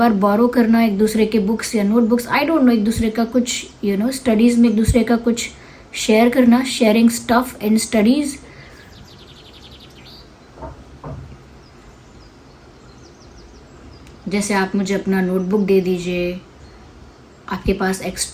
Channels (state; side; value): identical; both; correlation 1.00